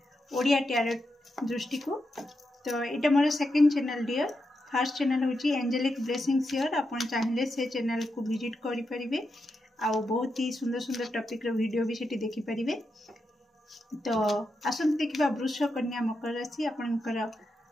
ओडिया टैरोट दृष्टि को। तो यहाँ more second channel dear first channel हूँ एंजेलिक ब्लेसिंग शेयर। आप चाहिए से चैनल को विजिट करेंगे आउ बहुत ही सुंदर सुंदर टॉपिक रो वीडियो भी सेठी देखि परिबे। तो आसंत देखिबा वृष कन्या मकर राशि आपनकर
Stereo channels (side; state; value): both; normal; correlation 0.86